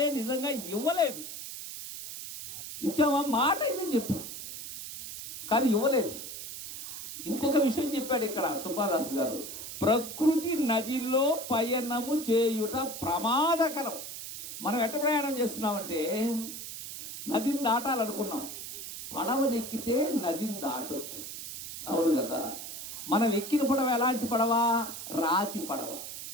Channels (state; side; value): noise; right; hiss, 9 dB below the sound